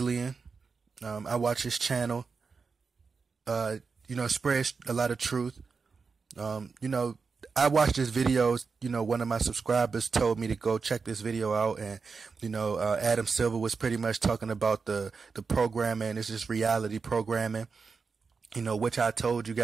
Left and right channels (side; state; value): left; quieter; 5.0 dB